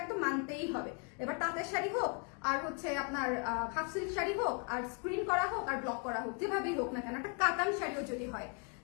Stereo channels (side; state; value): right; quieter; 38.2 dB